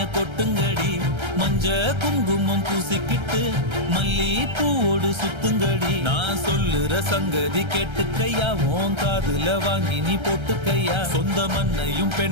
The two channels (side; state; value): left; late; 1.3 ms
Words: கொட்டுங்கடி, மஞ்ச குங்குமம் பூசிக்கிட்டு மல்லி பூவோடு சுத்துங்கடி. நான் சொல்லுற சங்கதி கேட்டுக்கையா, உன் காதுல வாங்கி நீ போட்டுக்கையா. சொந்த மண்ணையும்